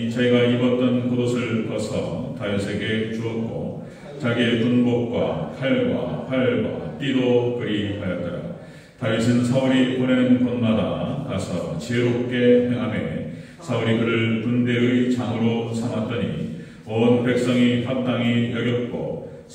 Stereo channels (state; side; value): identical; both; correlation 1.00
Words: 자기가 입었던 겉옷을 벗어 다윗에게 주었고 자기의 군복과 칼과 활과 띠도 그리하였더라. 다윗은 사울이 보내는 곳마다 가서 지혜롭게 행하매 사울이 그를 군대의 장으로 삼았더니 온 백성이 합당히 여겼고